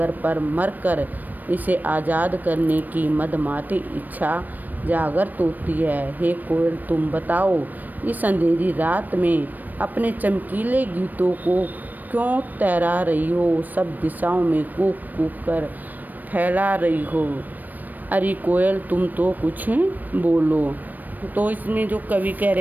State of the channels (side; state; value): left; late; 0.086 ms